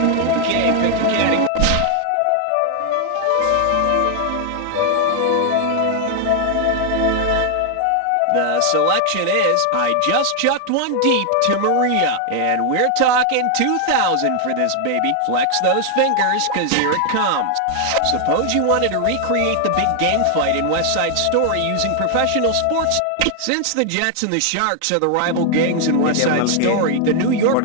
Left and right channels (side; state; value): both; different; correlation 0.00